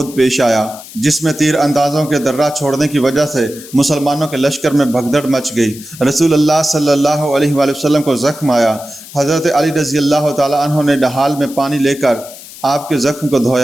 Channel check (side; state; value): left; noise; hiss, 17 dB below the sound